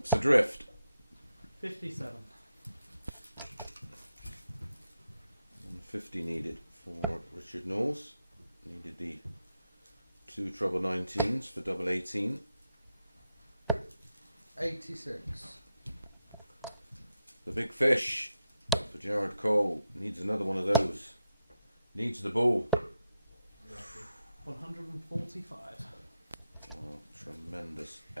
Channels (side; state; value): both; inverted; correlation -0.85